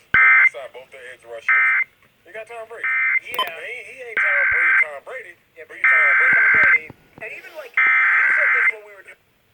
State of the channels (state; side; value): identical; both; correlation 1.00